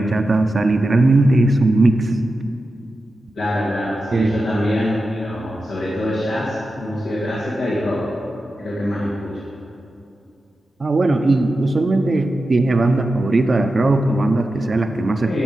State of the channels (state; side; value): normal; both; correlation 0.91